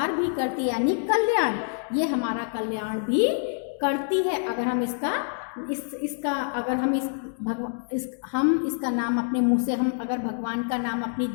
भी करती है, यानी कल्याण, ये हमारा कल्याण भी करती है। अगर हम इसका अगर हम इसका नाम अपने मुंह से, हम अगर भगवान का नाम अपनी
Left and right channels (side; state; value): right; silent; 61 dB below the other